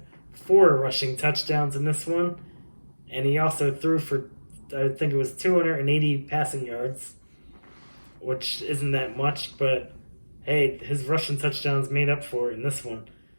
4 rushing touchdowns in this one, and he also threw for, I think it was 280 passing yards, which isn't that much, but hey, his rushing touchdowns made up for it in this one.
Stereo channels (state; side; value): inverted; both; correlation -1.00